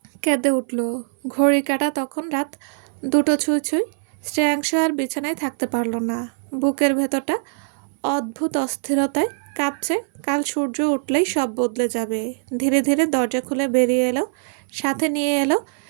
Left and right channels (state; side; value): silent; left; 64 dB below the other